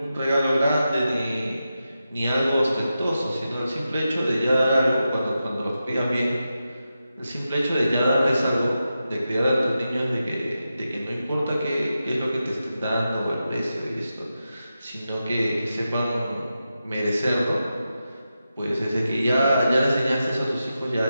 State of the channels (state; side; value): inverted; both; correlation -0.90